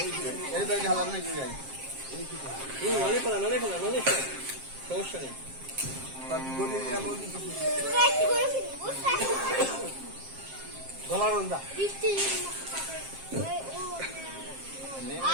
এই ব্যাগ হালাম নাকি যাই সমস্যা নেই গলা রন্দা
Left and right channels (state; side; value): late; left; 7.5 ms